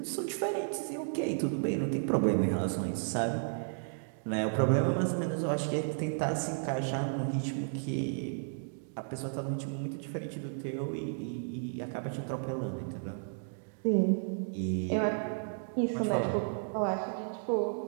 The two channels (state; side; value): silent; left; digital silence